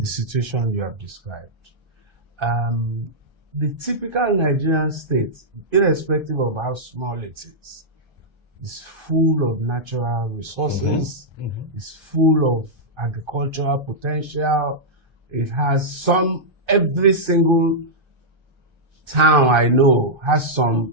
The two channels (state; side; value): late; left; 1.3 ms